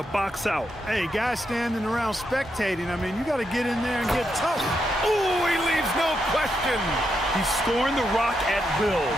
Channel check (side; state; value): both; normal; correlation 0.82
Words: box out. Hey, guys standing around spectating, I mean, you got to get in there and get tough. Ooh, he leaves no question. He's scoring the rock at will,